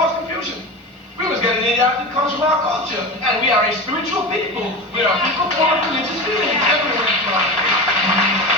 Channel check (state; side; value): normal; both; correlation 0.26